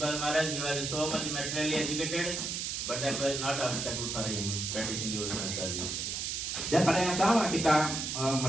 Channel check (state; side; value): noise; right; hiss, 3 dB below the sound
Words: Maharaj, he was so much materially educated, but that was not obstacle for him practicing devotional service. Dan pada yang sama kita